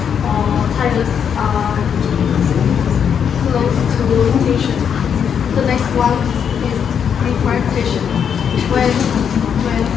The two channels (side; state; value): right; quieter; 7.7 dB